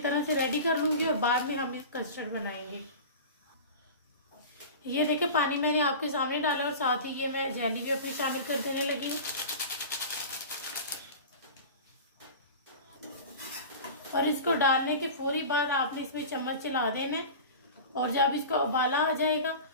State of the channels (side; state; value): both; inverted; correlation -0.33